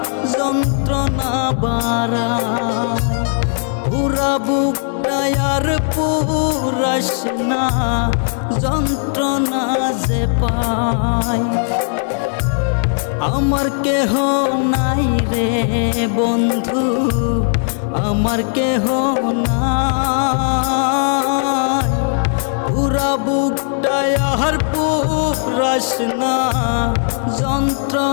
যন্ত্রণা বাড়ায়। পুরা বুকটায় আর পুরাস না যন্ত্রণা যে পাই। আমার কেহ নাই রে বন্ধু আমার কেহ নাই। পুরা বুকটায় আর পুরাস না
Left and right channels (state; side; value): silent; right; 66 dB below the other